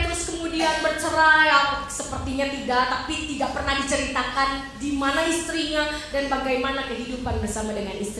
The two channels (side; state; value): both; identical; correlation 1.00